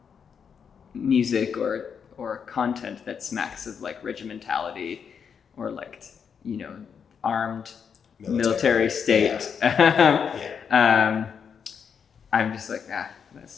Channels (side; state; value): right; quieter; 6.9 dB